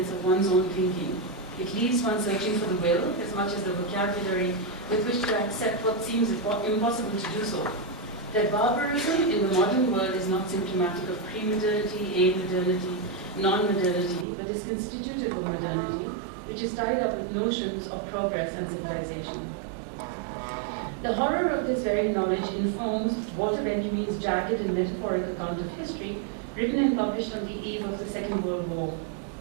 of one's own thinking. It leaves one searching for the will as much as the vocabulary with which to accept what seems impossible to do so. That barbarism in the modern world is not symptomatic of pre-modernity, a-modernity, non-modernity, but is constitutive of modernity, which is tied up with notions of progress and civilization. The horror of this very knowledge informs Walter Benjamin's jagged and metaphoric account of history, written and published on the eve of the Second World War.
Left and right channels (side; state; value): left; drops out; at 14.2 s